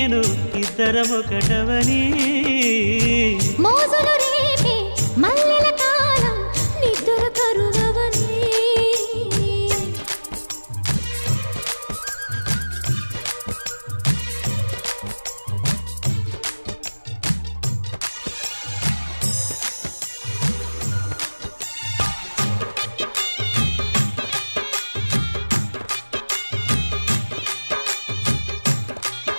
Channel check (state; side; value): inverted; both; correlation -1.00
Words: ఇద్దరమొకటవని. మోజులు రేపే మల్లెల కాలం, నిద్ర కరువవని.